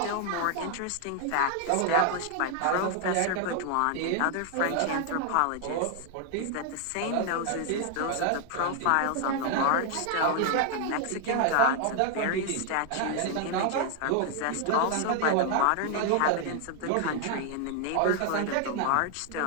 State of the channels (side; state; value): both; different; correlation 0.00